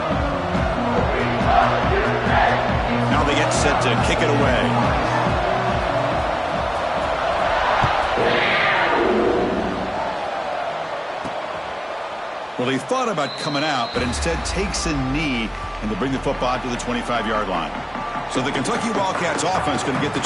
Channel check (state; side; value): identical; both; correlation 1.00